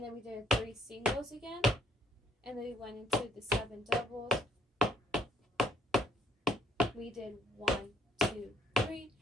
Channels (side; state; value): both; normal; correlation 0.65